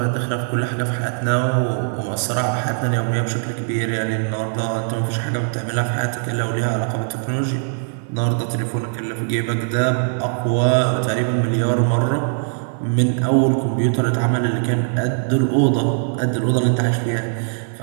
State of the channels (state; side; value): silent; left; 63 dB below the other